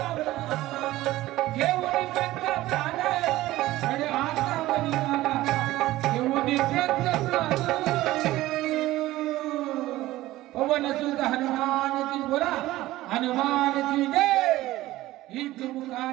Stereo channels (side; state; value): left; quieter; 16.6 dB